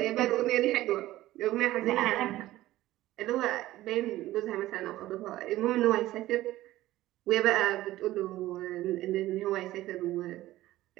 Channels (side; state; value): left; quieter; 15.7 dB